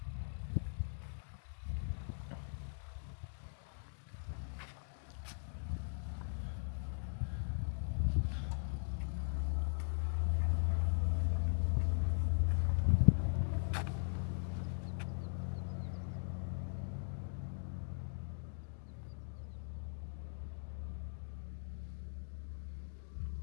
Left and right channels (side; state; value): right; silent; digital silence